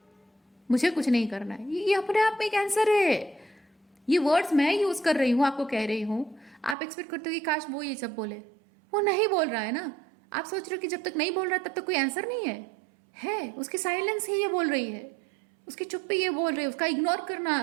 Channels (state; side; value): drops out; left; at 6.8 s